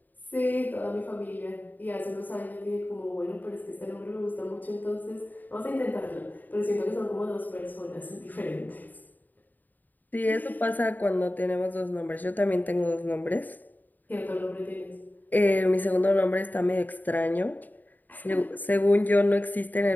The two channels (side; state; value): right; late; 0.086 ms